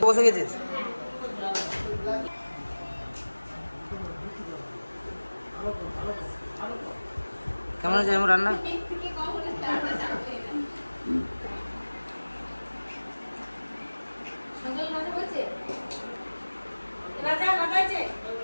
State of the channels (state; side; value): inverted; both; correlation -1.00